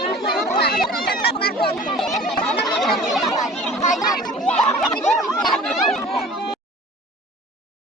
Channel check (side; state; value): both; normal; correlation 0.45